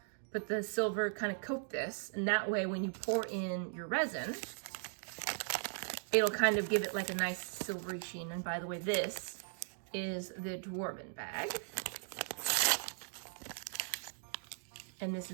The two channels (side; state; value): left; silent; digital silence